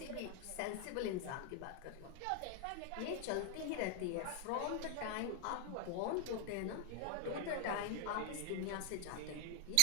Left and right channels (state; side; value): different; both; correlation 0.00